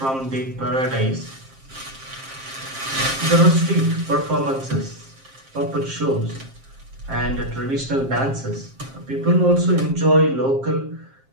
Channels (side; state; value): left; late; 7.5 ms